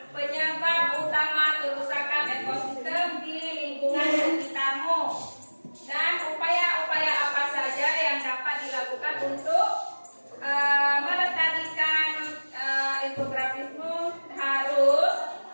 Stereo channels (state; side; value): inverted; both; correlation -1.00